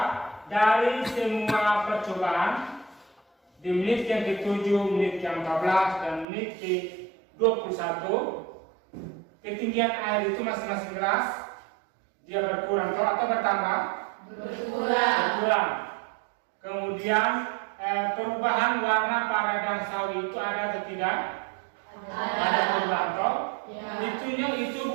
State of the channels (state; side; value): drops out; left; at 6.2 s